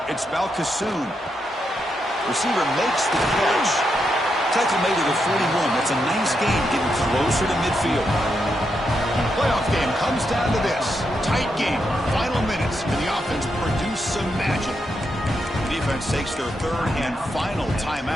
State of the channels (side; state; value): both; normal; correlation 0.83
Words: It's Balcassoon. Receiver makes the catch. Tackle made at the 41. That's a nice gain, getting closer to midfield. Playoff game comes down to this. Tight game. Final minutes. Can the offense produce some magic? The defense takes their third and final